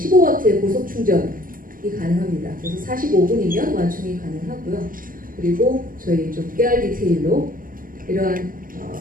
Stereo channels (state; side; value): late; left; 0.41 ms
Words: 고속 충전이 가능합니다. 그래서 45분이면 완충이 가능하고요. 그리고 저희 좀 깨알 디테일로 이러한